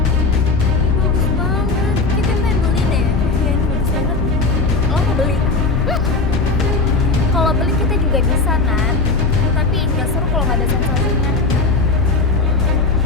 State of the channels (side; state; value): right; quieter; 3.8 dB